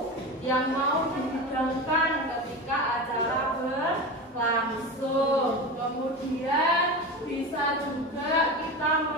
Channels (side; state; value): both; normal; correlation 0.25